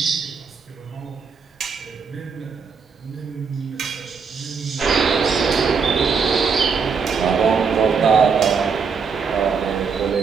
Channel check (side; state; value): left; quieter; 5.6 dB